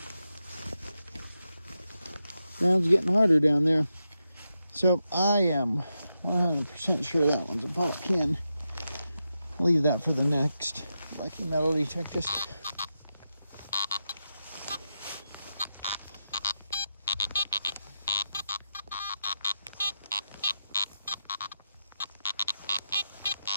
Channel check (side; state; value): both; inverted; correlation -0.88